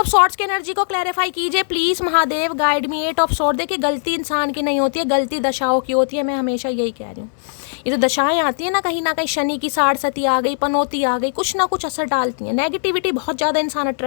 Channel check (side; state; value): right; silent; digital silence